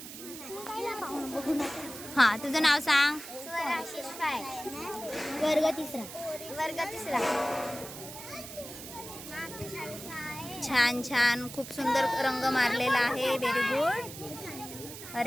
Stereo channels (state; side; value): noise; right; hiss, 12 dB below the sound